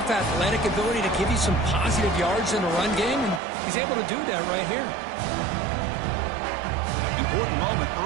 athletic ability to give you some positive yards in the run game, and he's able to do that right here. Important moment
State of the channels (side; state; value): left; drops out; at 3.4 s